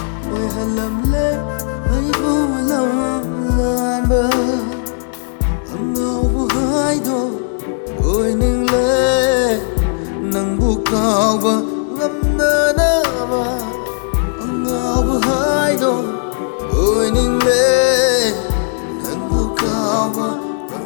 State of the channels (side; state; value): right; silent; digital silence